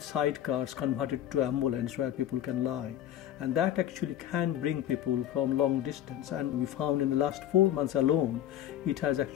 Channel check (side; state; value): right; quieter; 11.7 dB